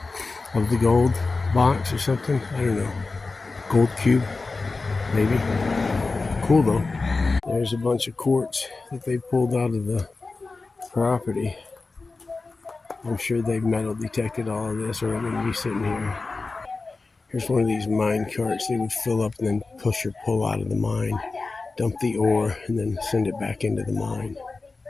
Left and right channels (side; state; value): right; quieter; 3.8 dB